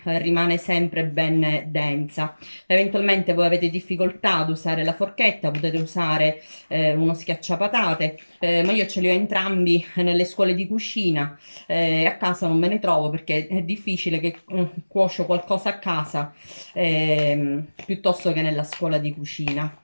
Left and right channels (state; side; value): inverted; both; correlation -1.00